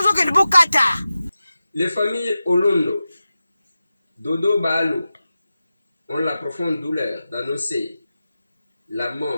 zo ke bo kata. Les familles Olondo, Dodo Balo ont la profonde douleur d'annoncer la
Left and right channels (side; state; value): both; inverted; correlation -0.93